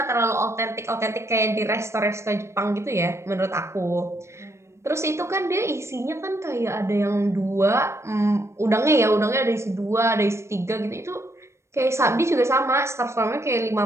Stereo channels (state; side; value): late; left; 0.13 ms